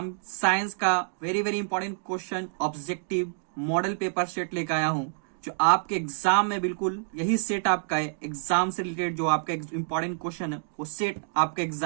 साइंस का very important question objective model paper set लेकर आया हूं, जो आपके एग्जाम में बिल्कुल यही सेट आपका है। एग्जाम से रिलेटेड जो आपका इंपॉर्टेंट क्वेश्चन है वो सेट आपके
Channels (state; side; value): silent; left; digital silence